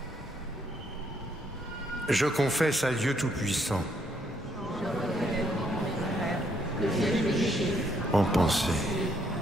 Je confesse à Dieu Tout-Puissant, en pensée,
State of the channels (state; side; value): normal; both; correlation 0.71